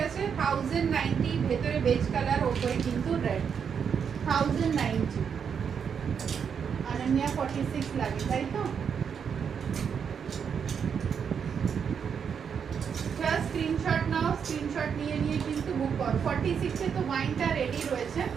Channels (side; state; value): left; quieter; 7.1 dB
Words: আছে, 1090 ভেতরে বেজ কালার, ওপরে কিন্তু রেড। 1090 অনন্যা 46 লাগে, তাই তো? জাস্ট স্ক্রিনশট নাও, স্ক্রিনশট নিয়ে কিন্তু বুক করো। 46 এ তো ওয়াইনটা রেডি রয়েছে,